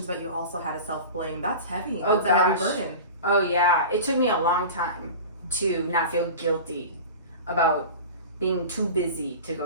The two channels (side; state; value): both; inverted; correlation -0.33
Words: but you also had a self-blame. That's heavy. That's a heavy burden. Oh, yeah. It took me a long time to not feel guilty about being too busy to